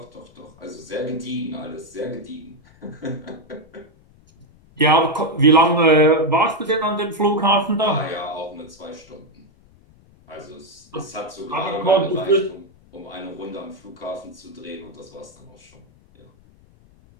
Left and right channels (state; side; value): noise; left; rumble, 28 dB below the sound